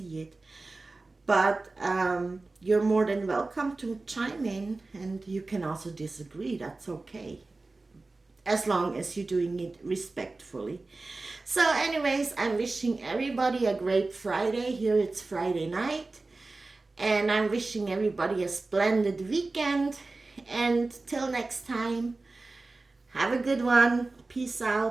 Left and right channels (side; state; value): left; quieter; 3.4 dB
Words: it, but you're more than welcome to chime in, and you can also disagree. That's okay, as long as you're doing it respectfully. So, anyways, I'm wishing everybody a great Friday. Here it's Friday night, and I'm wishing everybody a splendid weekend. And till next time, have a good one. Peace